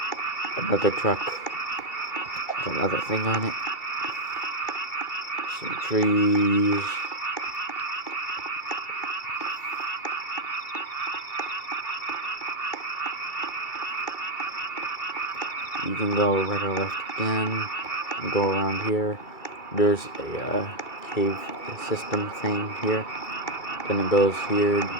Another truck with another thing on it. Some trees. You can go right or left again, and go around here. There's a cave system thing here. Then it goes here,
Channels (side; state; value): right; late; 2.3 ms